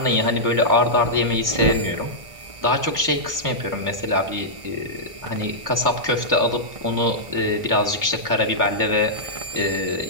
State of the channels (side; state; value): left; late; 1.5 ms